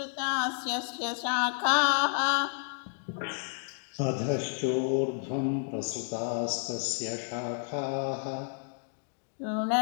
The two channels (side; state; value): right; silent; digital silence